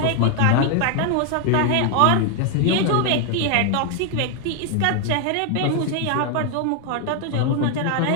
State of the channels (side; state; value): both; different; correlation 0.01